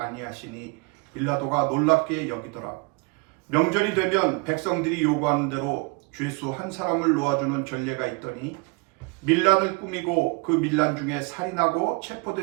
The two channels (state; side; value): quieter; left; 30.0 dB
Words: 빌라도가 놀랍게 여기더라. 명절이 되면 백성들이 요구하는 대로 죄수 한 사람을 놓아주는 전례가 있더니 밀란을 꾸미고 그 밀란 중에 살인하고